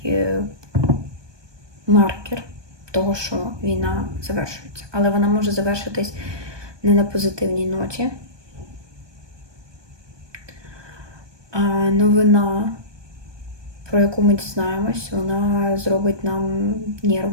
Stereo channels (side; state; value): left; late; 1.2 ms